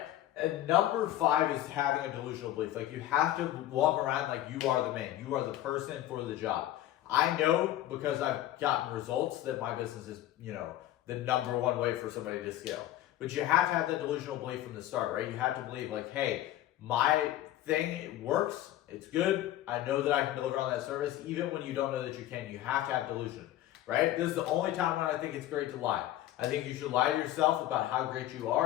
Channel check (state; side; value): quieter; right; 13.8 dB